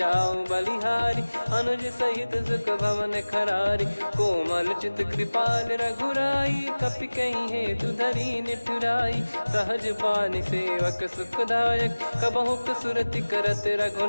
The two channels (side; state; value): both; inverted; correlation -1.00